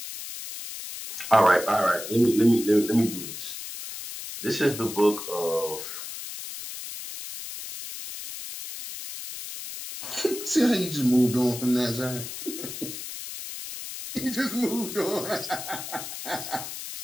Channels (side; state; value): left; noise; hiss, 9 dB below the sound